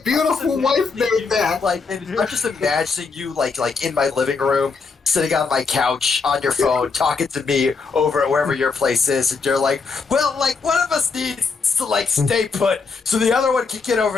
beautiful wife made that. Like, and I'm just imagining you like in my living room, sitting on my couch on your phone, talking to me over at wherever your place is, and you're like, well, like one of us needs to like stay put so the other one can get over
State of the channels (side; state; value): right; quieter; 4.7 dB